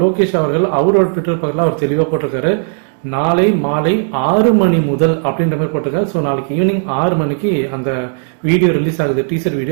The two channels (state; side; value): silent; left; digital silence